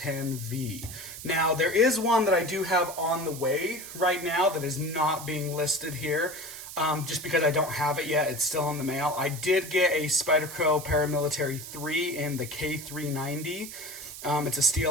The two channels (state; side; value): noise; right; hiss, 11 dB below the sound